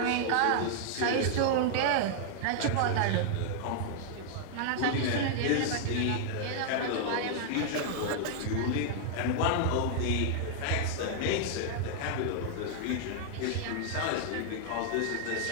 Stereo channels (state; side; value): different; both; correlation -0.01